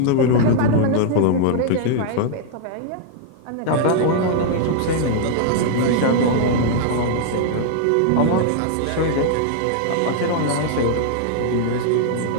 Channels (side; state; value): both; different; correlation -0.01